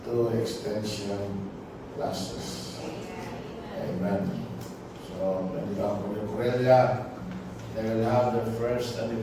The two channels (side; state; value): both; identical; correlation 1.00